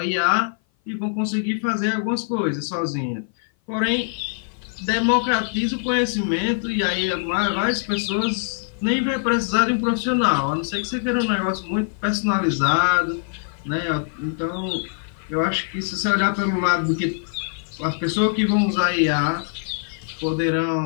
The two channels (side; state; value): right; silent; 57 dB below the other